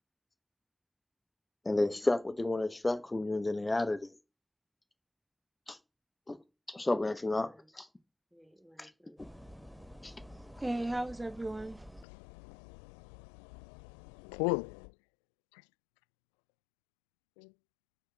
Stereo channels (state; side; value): drops out; right; at 12.1 s